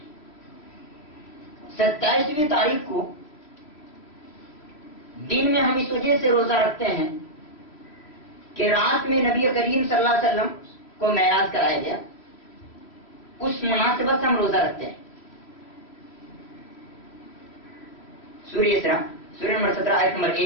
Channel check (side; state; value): right; late; 3.1 ms